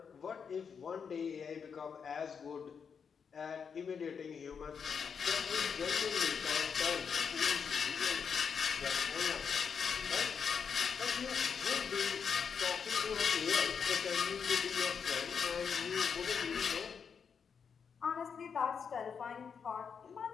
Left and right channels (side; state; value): right; quieter; 6.5 dB